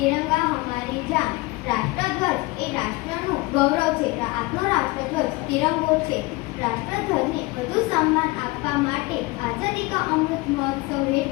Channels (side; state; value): right; quieter; 22.7 dB